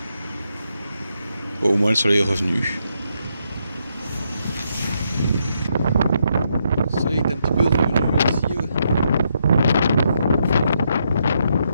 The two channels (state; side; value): inverted; both; correlation -0.78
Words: Au moins le soleil est revenu. Le soleil est un petit peu revenu ici. Ouais.